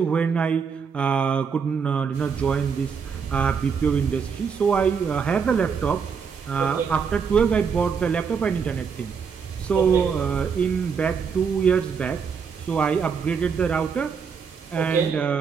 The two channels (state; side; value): quieter; left; 6.2 dB